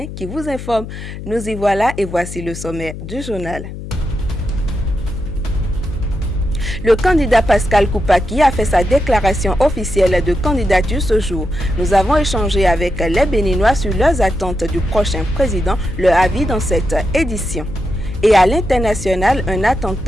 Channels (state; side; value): noise; left; hum, 10 dB below the sound